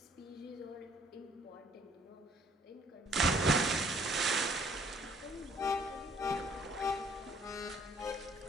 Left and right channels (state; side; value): normal; both; correlation 0.60